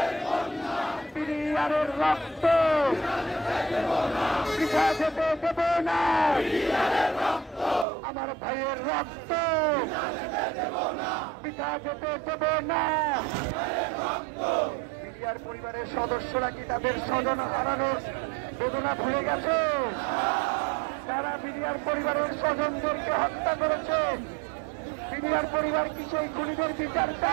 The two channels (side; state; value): left; drops out; at 7.9 s